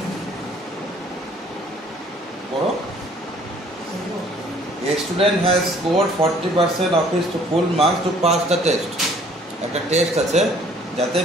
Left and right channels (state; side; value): normal; both; correlation 0.57